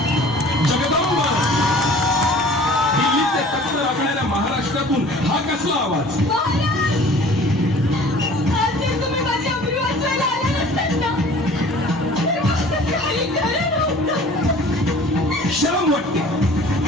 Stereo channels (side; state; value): both; normal; correlation 0.48